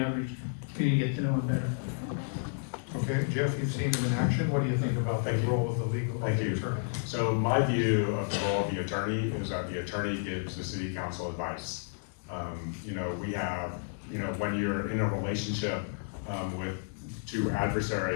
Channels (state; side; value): silent; right; 57 dB below the other